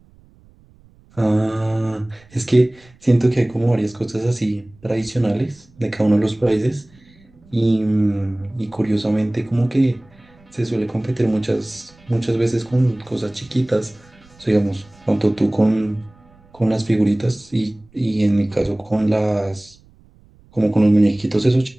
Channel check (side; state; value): right; noise; rumble, 28 dB below the sound